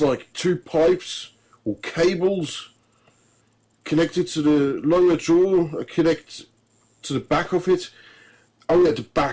like 2 pipes or cables connected to the lower jaw, connect to the back of it. Oh yeah, the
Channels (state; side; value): identical; both; correlation 1.00